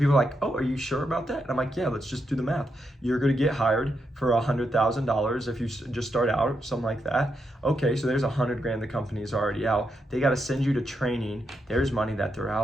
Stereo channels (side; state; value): both; normal; correlation 0.83